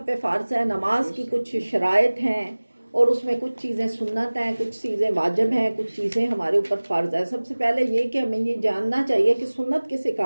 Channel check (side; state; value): both; inverted; correlation -1.00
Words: پہ فرض ہے۔ نماز کی کچھ شرائط ہیں، اور اس میں کچھ چیزیں سنت ہیں، کچھ چیزیں واجب ہیں، کچھ چیزیں ہمارے اوپر فرض ہے۔ سب سے پہلے یہ کہ ہمیں یہ جاننا چاہیے کہ سنت کسے